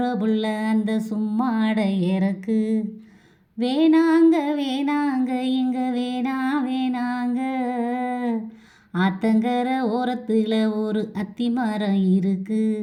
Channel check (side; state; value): both; identical; correlation 1.00